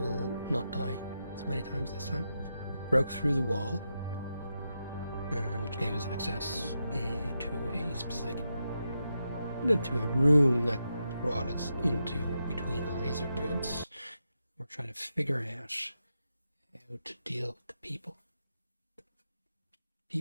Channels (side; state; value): both; inverted; correlation -0.86